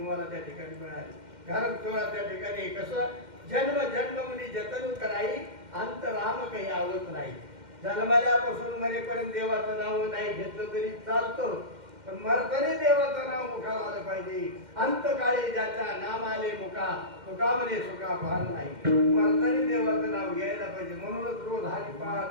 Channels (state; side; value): late; left; 2.1 ms